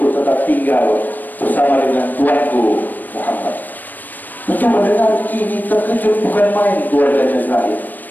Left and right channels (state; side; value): late; right; 0.088 ms